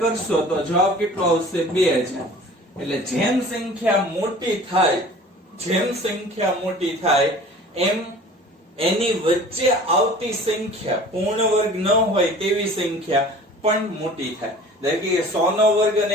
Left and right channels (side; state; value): both; normal; correlation 0.45